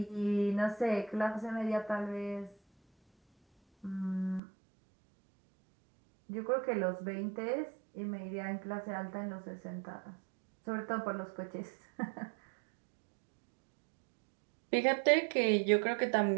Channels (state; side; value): drops out; left; at 4.4 s